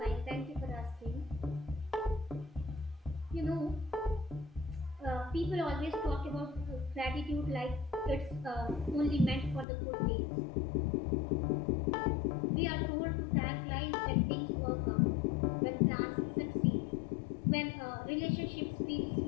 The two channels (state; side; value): drops out; right; at 9.7 s